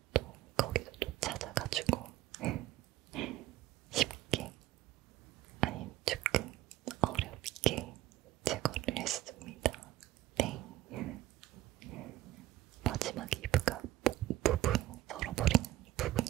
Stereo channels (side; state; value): left; quieter; 15.1 dB